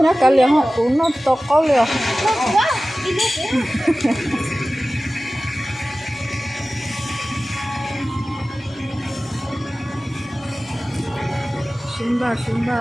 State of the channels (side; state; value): both; normal; correlation 0.96